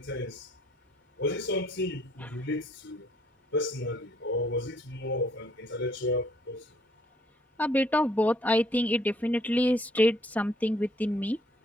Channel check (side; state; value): both; normal; correlation 0.64